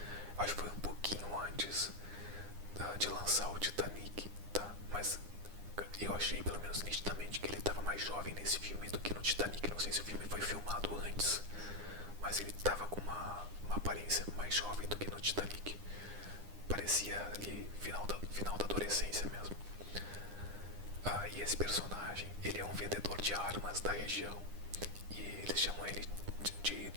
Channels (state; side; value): late; left; 9.9 ms